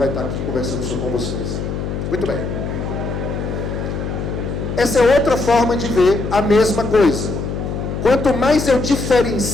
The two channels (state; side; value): noise; left; hum, 4 dB below the sound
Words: estar aqui conversando com vocês. Muito bem. Essa é outra forma de ver a mesma coisa. Quanto mais eu